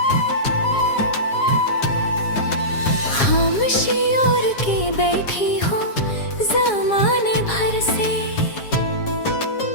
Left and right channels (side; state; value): right; late; 7.3 ms